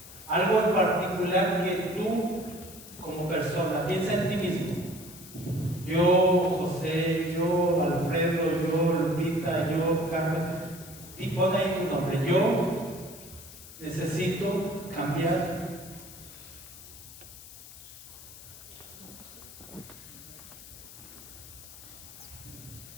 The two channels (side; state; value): left; noise; hiss, 16 dB below the sound